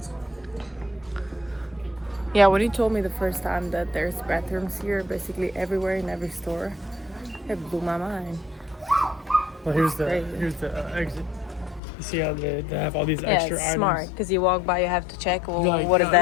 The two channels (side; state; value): right; drops out; at 11.8 s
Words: Yeah, when you told me the first time that there's bathrooms here, basically everywhere in every store, it blew my mind. Well, here's the exit. You see how they have all these extra it's items. smart because you walk by, you have to check. Well, Like, what is